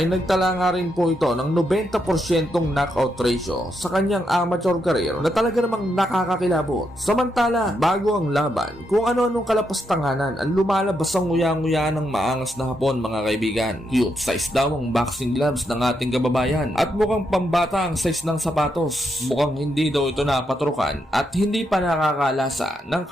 nagtala nga rin po ito ng 90% knockout ratio sa kanyang amateur career na talaga namang nakakakilabot. Samantala bago ang laban, kung ano-anong kalapastanganan ang lumalabas ang nguya-nguya yan ng maangas na Hapon mga kaibigan. Cute size daw ang boxing gloves ng ating kababayan at mukhang pambata ang size ng sapatos. Mukhang hindi daw ito napatrukan at hindi pa nakakalasa ng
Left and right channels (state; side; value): normal; both; correlation 0.81